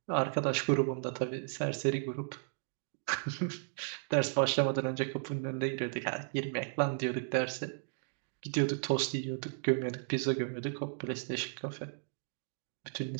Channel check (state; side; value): silent; left; digital silence